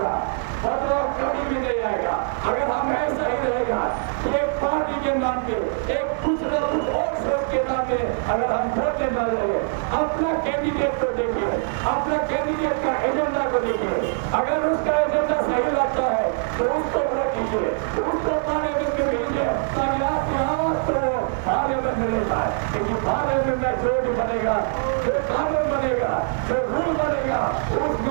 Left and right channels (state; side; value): silent; left; 63 dB below the other